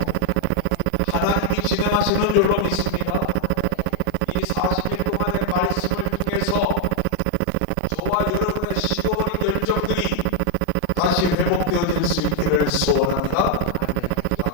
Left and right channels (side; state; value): both; different; correlation 0.00